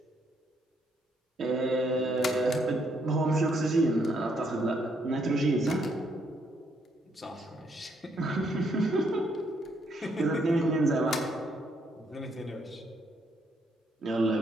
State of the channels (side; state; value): both; normal; correlation 0.73